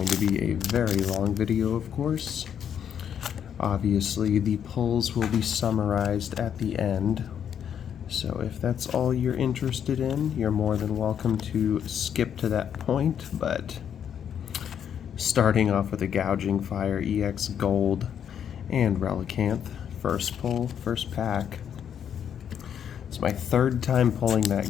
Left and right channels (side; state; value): right; quieter; 8.7 dB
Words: to be a very long video, of course. Obviously the pulls will be summarized at the end. So if that's all you're interested in, you're more than welcome to skip to that point, but starting off with a Gouging Fire EX Gold and Relicanth, first pull, first pack. It's my third time pulling that